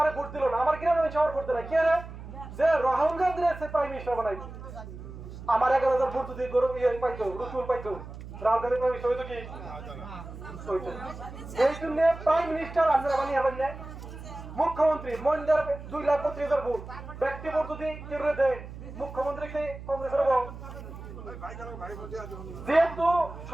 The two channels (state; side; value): noise; right; hum, 12 dB below the sound